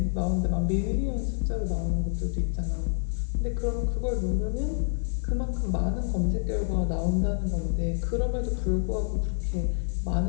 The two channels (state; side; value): silent; right; digital silence